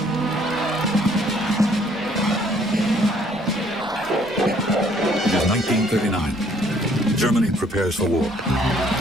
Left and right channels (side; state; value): both; normal; correlation 0.63